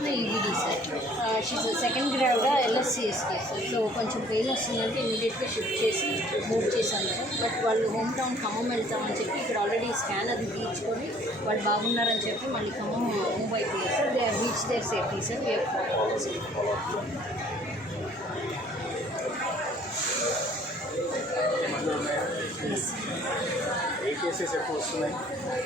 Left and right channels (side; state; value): both; normal; correlation 0.56